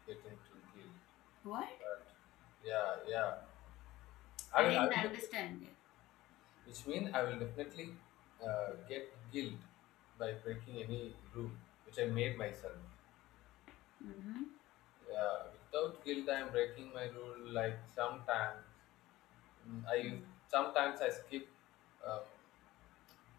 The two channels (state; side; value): quieter; right; 17.3 dB